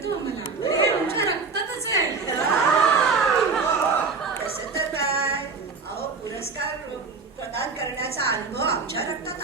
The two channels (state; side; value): quieter; left; 4.7 dB